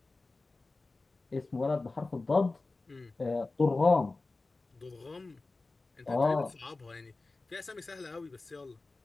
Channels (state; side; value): quieter; right; 3.4 dB